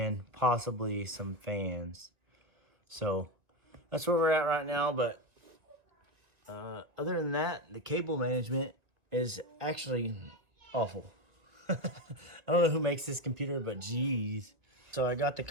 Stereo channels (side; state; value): left; late; 1.8 ms